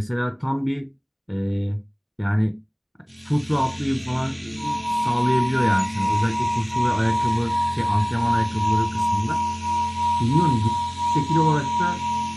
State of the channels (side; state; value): both; identical; correlation 1.00